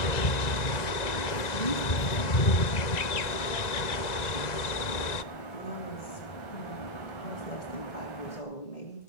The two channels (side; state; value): right; late; 1.9 ms